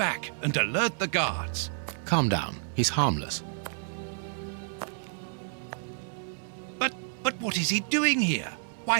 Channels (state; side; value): silent; left; 58 dB below the other